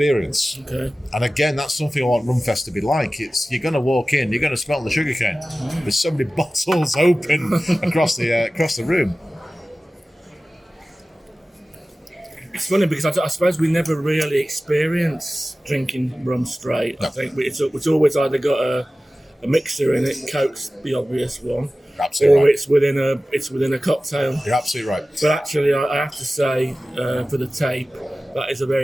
Okay. And again, that's something I want Rumfest to be like. You're going to walk in, you're going to smell the sugarcane. There's so many bottles open across the room. It's funny because I suppose we never really experience drinking rum straight. No. I think it's always either got a mixer in it, Coke's the obvious one, Absolutely or right. it's within a cocktail. You're absolutely right. But actually, I have to say, for the tape, that is a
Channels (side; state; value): both; normal; correlation 0.96